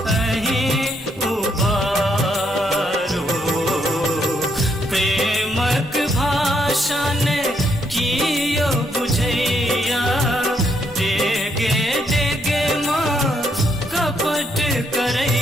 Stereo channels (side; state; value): both; normal; correlation 0.74